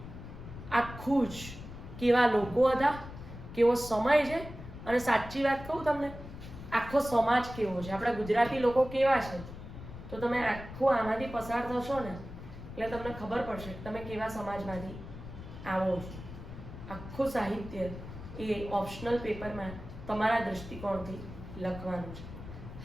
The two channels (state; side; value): noise; left; rumble, 12 dB below the sound